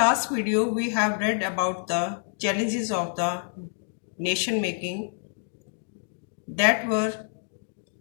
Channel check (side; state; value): right; silent; digital silence